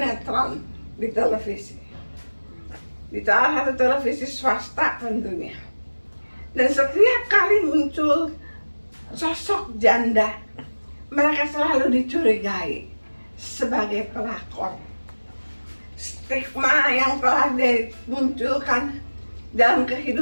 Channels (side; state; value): both; inverted; correlation -1.00